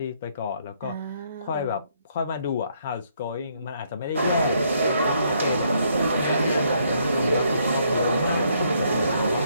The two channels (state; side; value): inverted; both; correlation -0.71